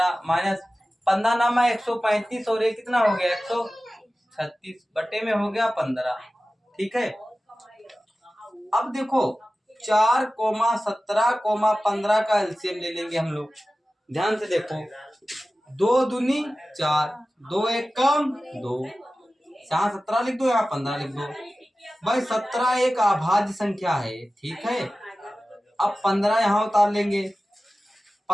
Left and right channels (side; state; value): both; normal; correlation 0.96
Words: माइनस 15 नामा 135 और ये कितना हो गया? 136 बटे में हो गया 15। ठीक है, अब देखो 4 17 15 का एलसीएम ले लेंगे हम लोग। ध्यान से देखो, 2 दूनी 4, 2 एक कम 2, यहाँ 17 लिख दो, यहाँ 15 लिख दो भाई। 17 एक अभाज्य संख्या है। ठीक है, अब 15 यहाँ उतार लेंगे,